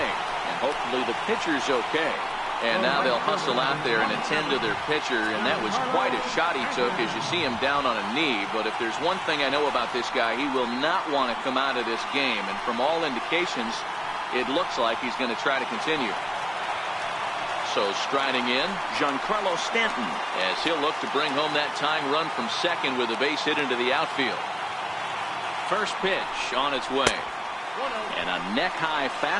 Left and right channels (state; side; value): identical; both; correlation 1.00